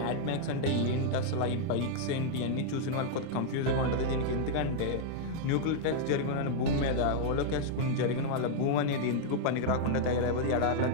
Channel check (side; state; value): both; different; correlation -0.01